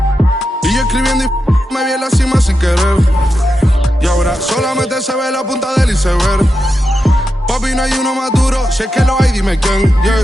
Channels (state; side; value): normal; both; correlation 0.88